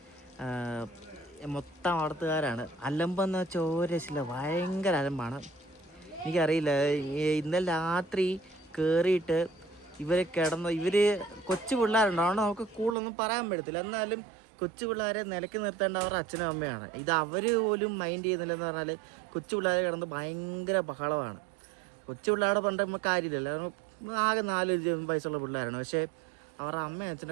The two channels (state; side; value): drops out; left; at 13.0 s